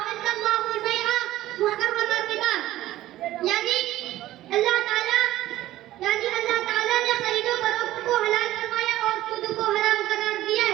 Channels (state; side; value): quieter; left; 14.9 dB